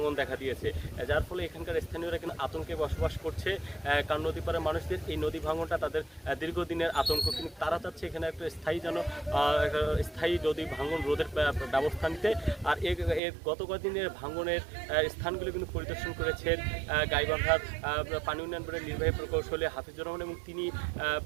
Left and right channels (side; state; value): left; drops out; at 13.2 s